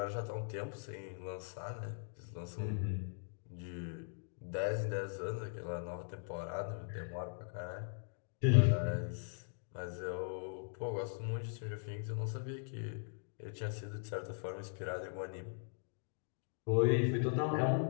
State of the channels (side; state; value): right; silent; digital silence